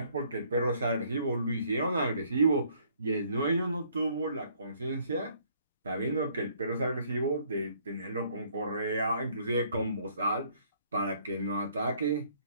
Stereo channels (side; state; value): both; inverted; correlation -0.64